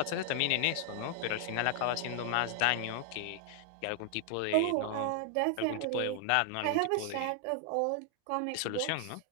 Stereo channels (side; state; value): both; different; correlation 0.00